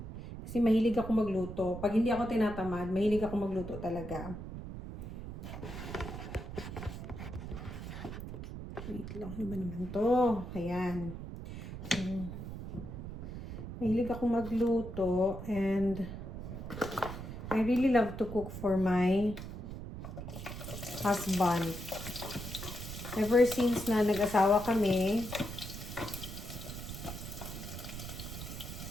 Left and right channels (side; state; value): right; noise; rumble, 8 dB below the sound